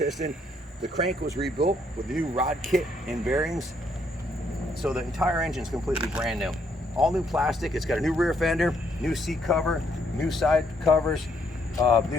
The crank was rebuilt with the new rod kit and bearings. So the entire engine is completely brand new. All new plastic. It's got a new rear fender, new seat cover, new side covers, new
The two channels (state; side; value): normal; both; correlation 0.71